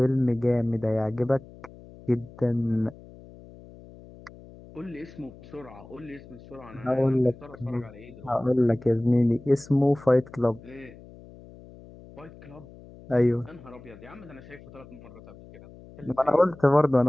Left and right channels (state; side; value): noise; left; hum, 20 dB below the sound